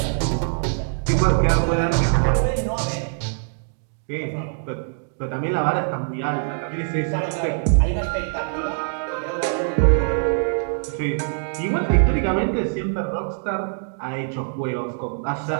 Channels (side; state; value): left; silent; digital silence